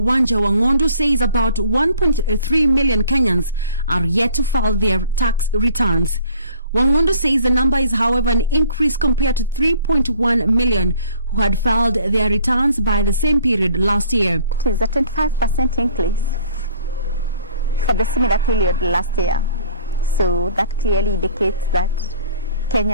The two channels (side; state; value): both; inverted; correlation -0.53